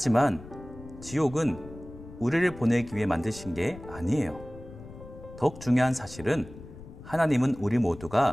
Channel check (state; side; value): noise; left; rumble, 16 dB below the sound